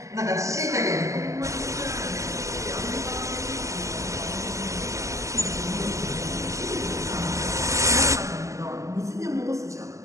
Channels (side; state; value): left; late; 0.15 ms